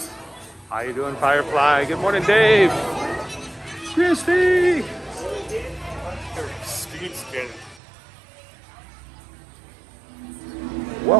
How you doing, Firefly? Good morning, Dave. Christy.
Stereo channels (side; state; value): left; drops out; at 7.8 s